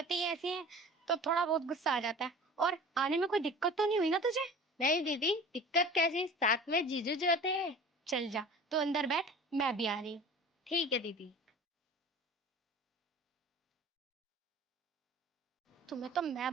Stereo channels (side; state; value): both; normal; correlation 0.41